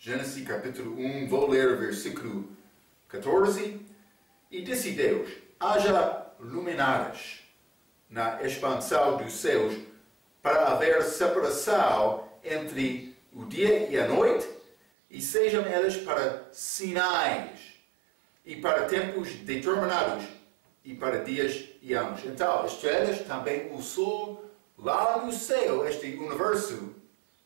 capítulo 1, vou ler o versículo 14. E disse Deus, haja luminares na expansão dos céus para haver separação entre o dia e a noite, e sejam elas para sinais e para tempos determinados e para dias e anos. Então, estrelas, também o sol, lá no céu, este universo,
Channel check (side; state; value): left; drops out; at 14.8 s